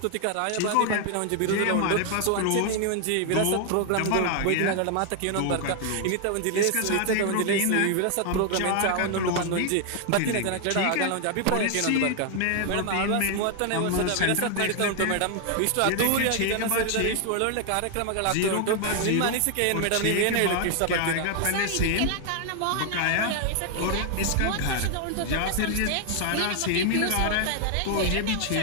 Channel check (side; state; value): both; different; correlation 0.00